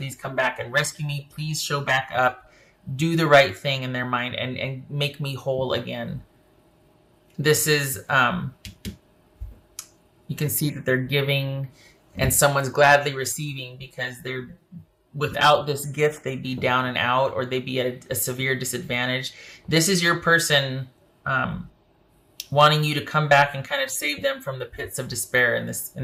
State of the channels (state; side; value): identical; both; correlation 1.00